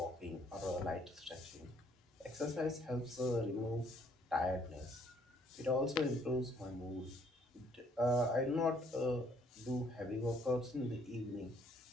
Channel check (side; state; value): both; normal; correlation 0.65